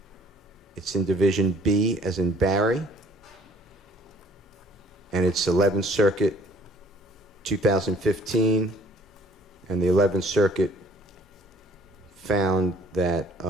It's in Division B, as in Barry. And it's 11th Circuit, 2015. And the 11th Circuit found that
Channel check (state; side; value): normal; both; correlation 0.56